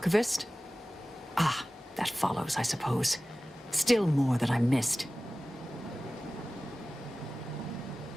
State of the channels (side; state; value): both; normal; correlation 0.97